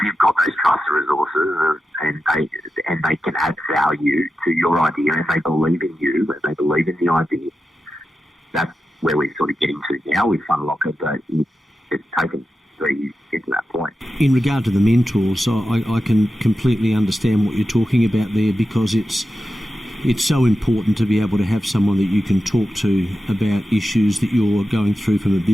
got those trusted resources and they can add value to your idea and they believe in you and they believe in the idea, that's where we're sort of getting to now with Funlocker, but it's taken 3 years to get to that point. In regard to the mentors, I can completely understand what you're talking about there, because it's so important to be able to have someone that you can talk to about issues that you're going through from a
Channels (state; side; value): normal; both; correlation 0.91